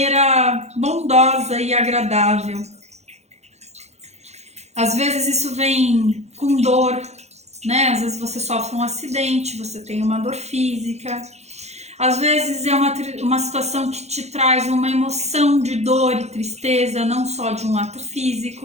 bondosa e agradável. Às vezes isso vem com dor, né? Às vezes você sofre um acidente, você tem uma dor física. Às vezes é uma situação que te traz uma emoção de dor e tristeza, não só de um ato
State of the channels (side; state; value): left; late; 0.32 ms